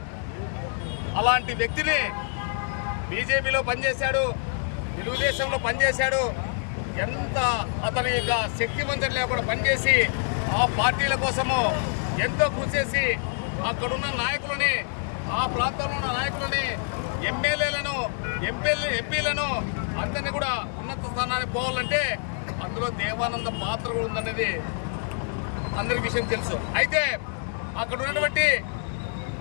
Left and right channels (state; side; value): silent; right; 61 dB below the other